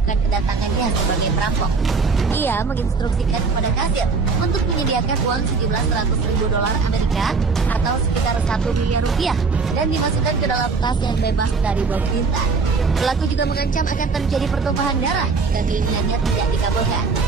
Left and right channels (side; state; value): left; quieter; 4.6 dB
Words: kedatangannya sebagai perampok. Ia menginstruksikan kepada kasir untuk menyediakan uang sejumlah $100.000 Amerika atau sekitar 1 miliar rupiah dan dimasukkan ke dalam tas yang bebas dari bom tinta. Pelaku juga mengancam akan terjadi pertumpahan darah jika keinginannya tidak dikabulkan.